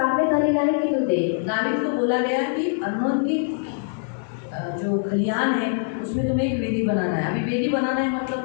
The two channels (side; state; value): right; silent; digital silence